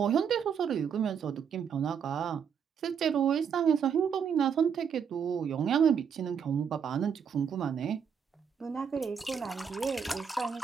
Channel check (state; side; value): quieter; left; 7.2 dB